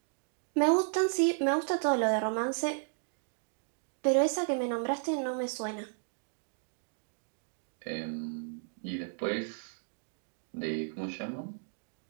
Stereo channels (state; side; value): silent; left; digital silence